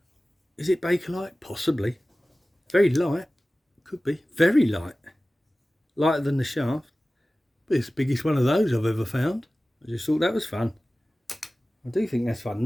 Is it Bakelite? Possibly. Very light. Could be. Very light. Lighter than the shaft. But it's the biggest one of those I've ever found. I just thought that was fun. I do think that's fun.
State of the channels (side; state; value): both; normal; correlation 0.97